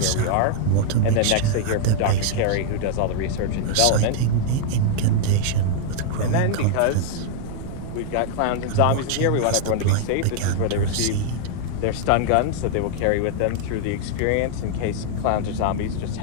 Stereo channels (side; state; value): both; different; correlation -0.01